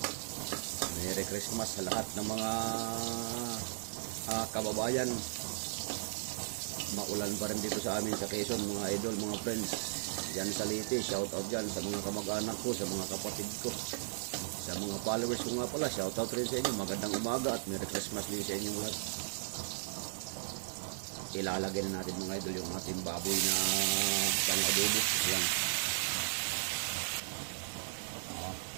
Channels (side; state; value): left; silent; 54 dB below the other